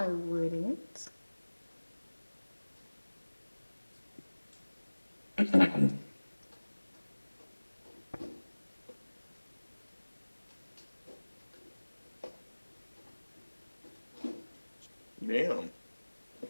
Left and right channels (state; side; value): inverted; both; correlation -1.00